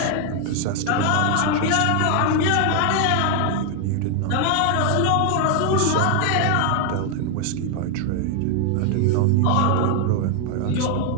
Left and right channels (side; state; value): both; different; correlation 0.00